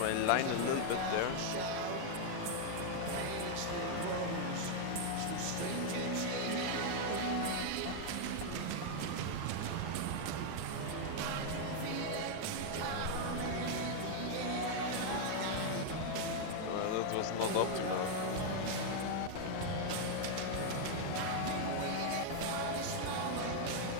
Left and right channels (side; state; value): both; different; correlation 0.00